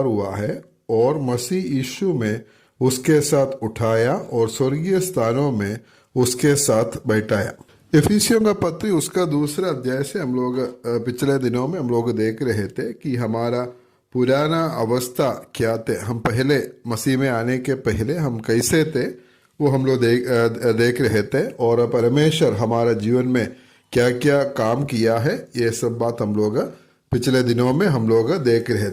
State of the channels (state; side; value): identical; both; correlation 1.00